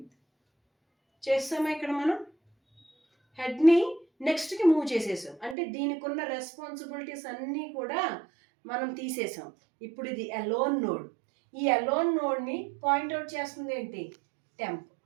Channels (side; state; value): left; drops out; at 5.6 s